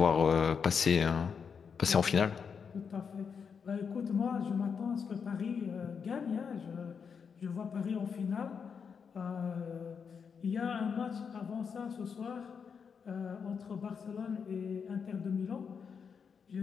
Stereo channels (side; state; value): right; quieter; 6.3 dB